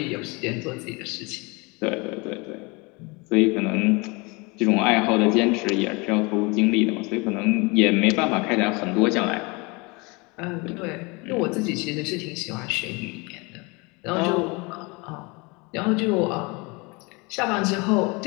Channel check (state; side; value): quieter; right; 27.5 dB